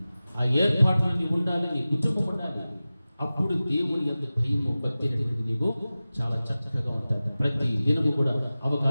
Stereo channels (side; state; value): both; inverted; correlation -0.96